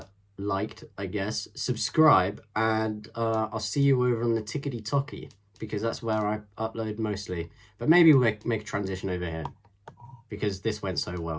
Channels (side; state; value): both; identical; correlation 1.00